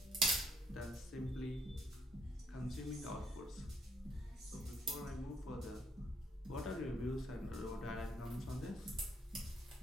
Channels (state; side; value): normal; both; correlation 0.71